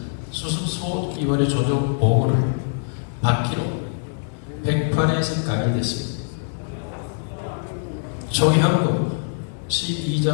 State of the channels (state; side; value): silent; right; digital silence